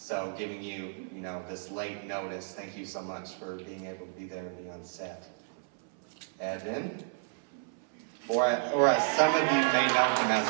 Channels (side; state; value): left; silent; 56 dB below the other